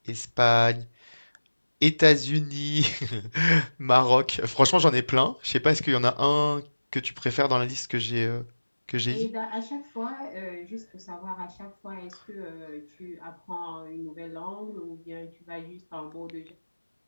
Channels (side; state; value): both; inverted; correlation -1.00